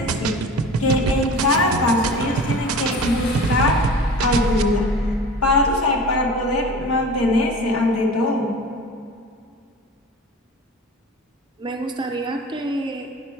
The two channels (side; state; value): both; normal; correlation 0.37